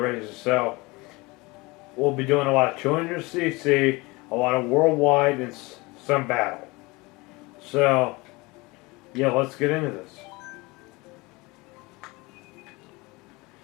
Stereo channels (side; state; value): right; quieter; 24.0 dB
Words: races. So we'll be doing a lot of 200cc, a lot of worldwide, and some battle. So yeah, let's get into this.